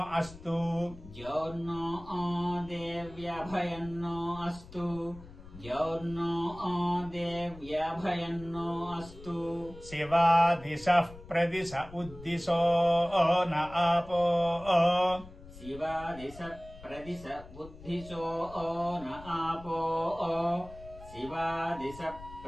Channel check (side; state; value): left; noise; rumble, 18 dB below the sound